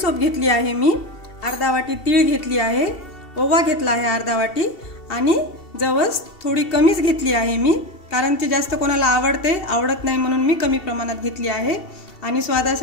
घेतली आहे मी, अर्धा वाटी तीळ घेतली आहे, ओवा घेतला आहे अर्धा वाटी आणि जवस थोडी कमीच घेतली आहे मी, कारण ती जास्त कोणाला आवडत नाही म्हणून मी कमी प्रमाणात घेतली आहे। आणि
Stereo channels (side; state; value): right; late; 2.7 ms